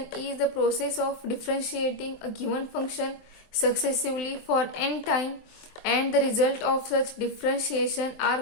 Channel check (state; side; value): late; right; 23 ms